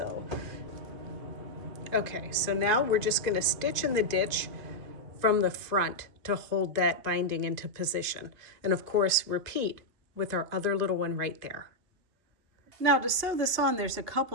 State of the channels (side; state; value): left; late; 2.5 ms